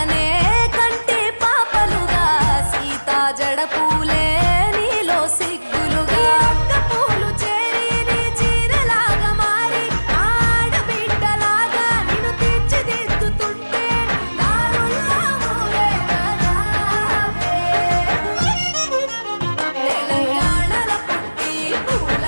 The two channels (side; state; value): both; inverted; correlation -1.00